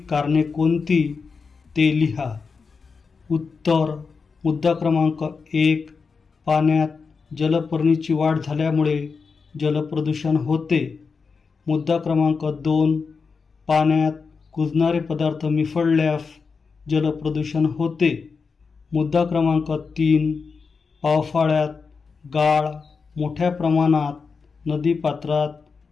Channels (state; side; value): quieter; right; 5.0 dB